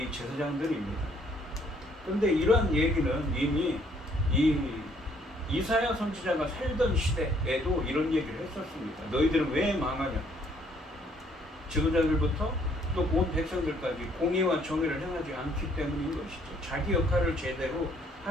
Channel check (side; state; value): both; normal; correlation 0.65